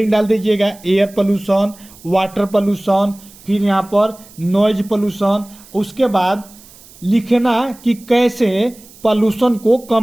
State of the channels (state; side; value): noise; right; hiss, 23 dB below the sound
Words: डाल दीजिएगा, एयर पोल्यूशन, वाटर पोल्यूशन, फिर यहाँ पर नॉइज पोल्यूशन। उसके बाद लिखना कि कैसे पोल्यूशन को